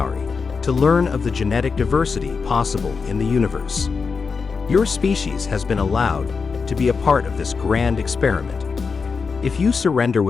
to learn of the genetic diversity possible in the universe. Your species has been allowed to be a part of this grand experiment. If you surrender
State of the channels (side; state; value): right; quieter; 5.1 dB